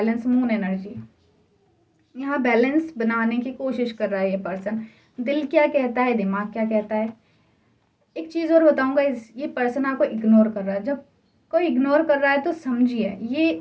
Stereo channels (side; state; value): both; identical; correlation 1.00